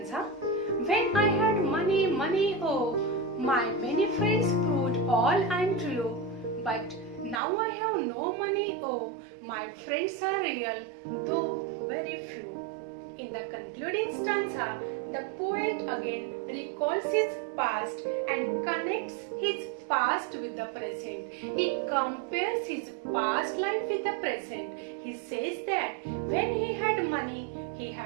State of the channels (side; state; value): left; drops out; at 7.4 s